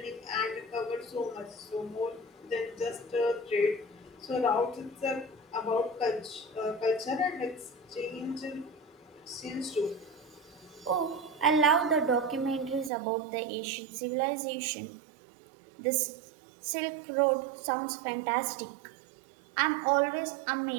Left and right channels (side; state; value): left; drops out; at 12.9 s